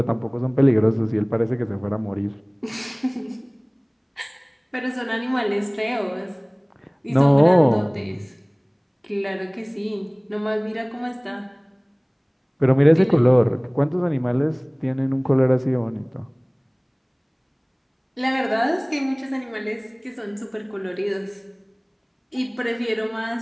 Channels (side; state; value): both; identical; correlation 1.00